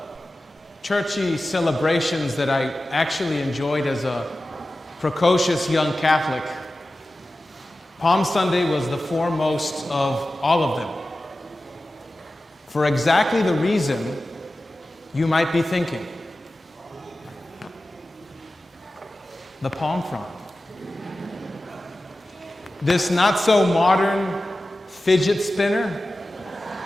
churchy celebrations that I actually enjoyed as a precocious young Catholic, Palm Sunday was the foremost of all of them. For exactly the reason you might be thinking. The palm frond. This not so modern fidget spinner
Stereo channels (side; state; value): both; normal; correlation 0.95